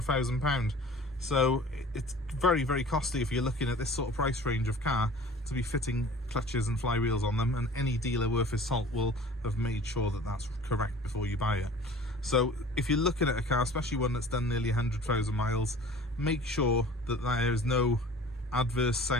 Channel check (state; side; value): normal; both; correlation 0.45